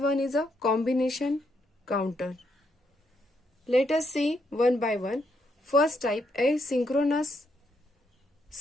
one is a combination counter. Let us see one by one. First type, asynchronous,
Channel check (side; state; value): both; normal; correlation 0.77